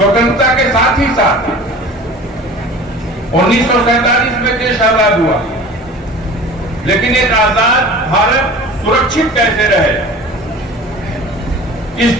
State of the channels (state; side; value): normal; both; correlation 0.41